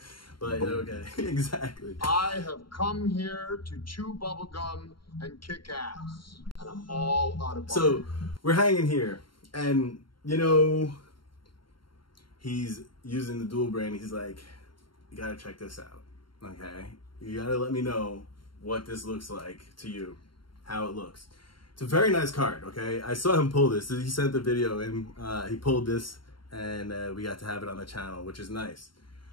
But okay, exactly. I have come here to chew bubblegum and kick ass, and I'm all out of bubblegum. So, we're hanging here, and you know, he's using the dual brain. He's like, you gotta check this out, okay? You gotta let me know what this looks like to you, how it looks. It's a very nice card, okay? I saw him pull this. He sent the video and he pulled this, and we got to have it on the channel, which is nice.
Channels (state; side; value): late; right; 0.73 ms